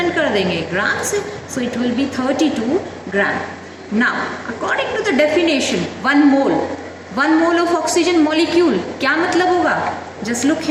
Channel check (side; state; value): both; identical; correlation 1.00